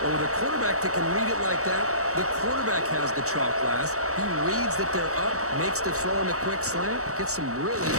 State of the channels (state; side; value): late; left; 0.65 ms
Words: Or with a quarterback that can read it like that, the quarterback has the chalk last. He reads that they're up, makes the throw in a quick slant, gets some really